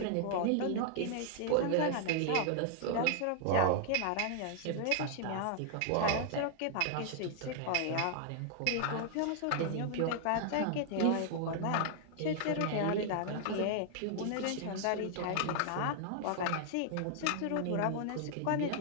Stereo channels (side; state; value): both; different; correlation 0.00